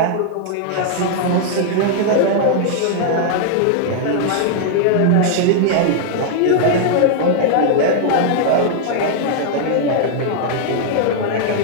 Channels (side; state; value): both; different; correlation -0.01